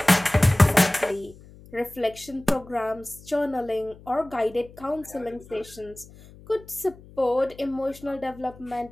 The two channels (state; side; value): noise; left; hum, 21 dB below the sound